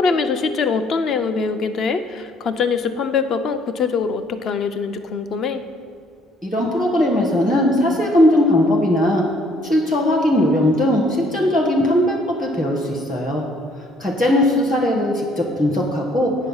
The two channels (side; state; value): both; normal; correlation 0.63